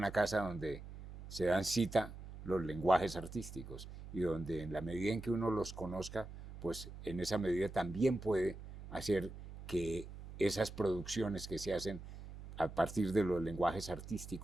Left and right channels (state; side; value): noise; right; hum, 13 dB below the sound